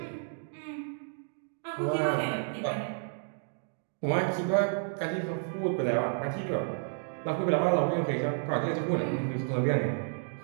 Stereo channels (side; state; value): left; silent; digital silence